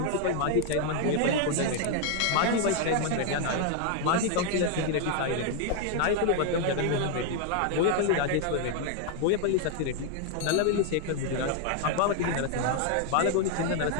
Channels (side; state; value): both; different; correlation 0.00